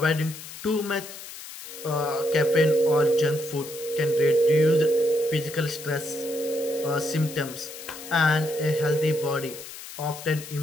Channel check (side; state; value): left; noise; hiss, 13 dB below the sound